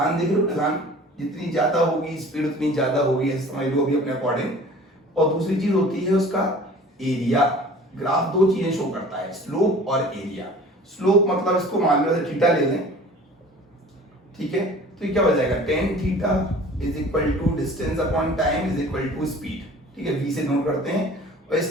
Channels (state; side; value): normal; both; correlation 0.46